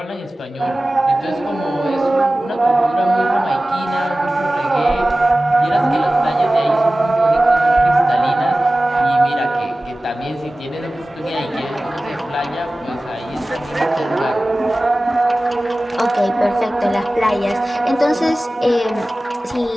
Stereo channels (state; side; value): normal; both; correlation 0.97